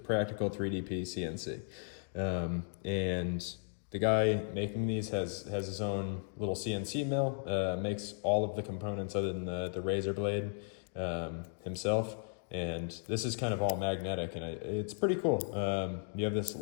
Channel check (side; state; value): right; silent; digital silence